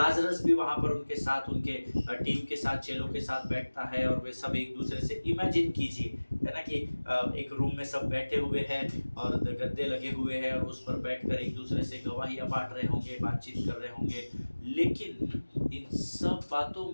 भी वहाँ पर उनके साथ, उनके टीम के साथ, चेलों के साथ बैठता है और वे सब एक दूसरे से, इमेजिन कीजिए है ना कि एक रूम में सब बैठे हुए हैं और गद्दे लगे हुए हैं और उस पर बैठकर एक दूसरे से गवाहियाँ बांट रहे होंगे, बातचीत कर रहे होंगे। लेकिन इन सब बातों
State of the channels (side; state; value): both; inverted; correlation -1.00